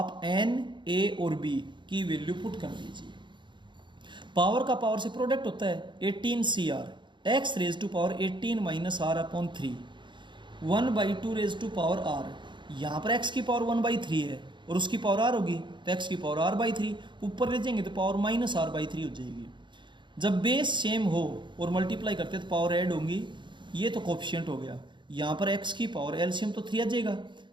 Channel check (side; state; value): left; late; 0.23 ms